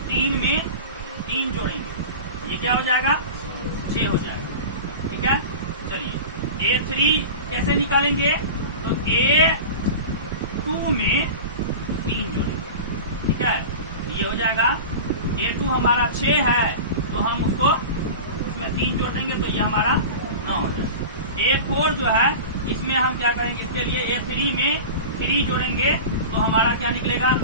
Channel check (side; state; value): both; inverted; correlation -0.31